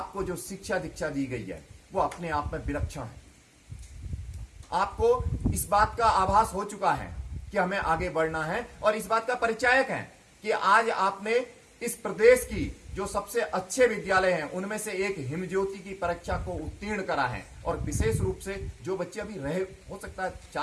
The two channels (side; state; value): both; identical; correlation 1.00